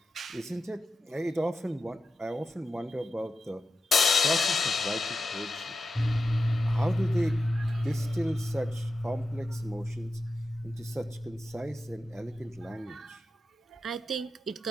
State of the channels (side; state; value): both; normal; correlation 0.89